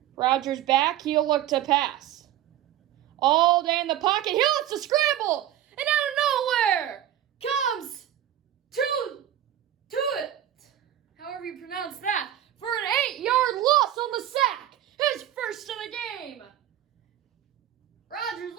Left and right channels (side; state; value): left; quieter; 11.8 dB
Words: Rodgers back, he'll look to pass. All day in the pocket, he lets to scramble, and out of nowhere comes to it. However you pronounce that, for an 8-yard loss on the sack. His first of the game. Rodgers